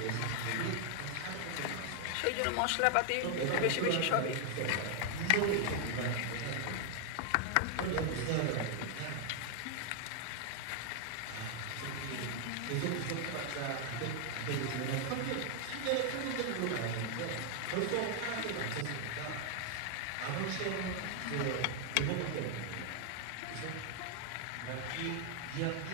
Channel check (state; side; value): different; both; correlation 0.00